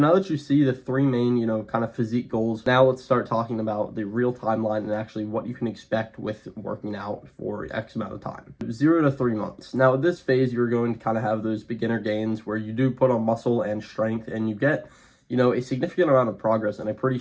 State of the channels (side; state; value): both; identical; correlation 1.00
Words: now that you see the 3 main, kind of physique goals, now let's start talking about the real timeline and actually what you can expect with working out for X amount of time. 0 to 3 months. Now at this phase, you're going to kind of have those beginner gains where you do put on muscle and strength, and you get a significant amount of progress in a pretty